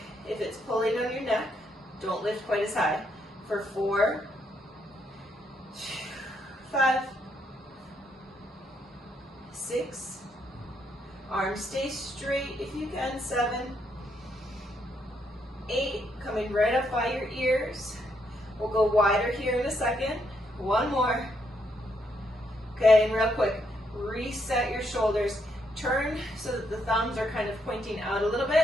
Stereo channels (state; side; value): normal; both; correlation 0.76